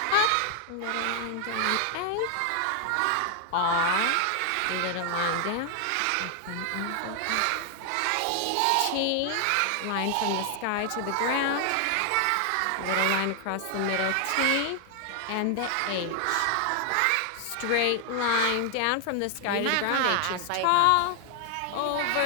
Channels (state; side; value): different; both; correlation 0.00